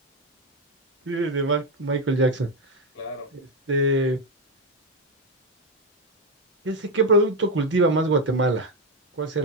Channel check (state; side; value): normal; both; correlation 0.08